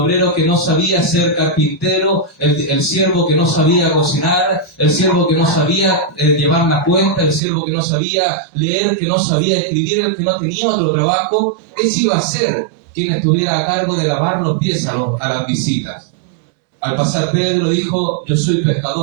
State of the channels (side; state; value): left; drops out; at 7.4 s